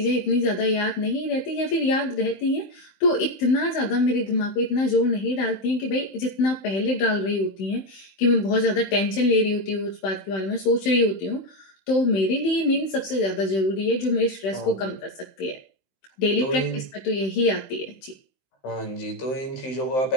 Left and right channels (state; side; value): late; right; 15 ms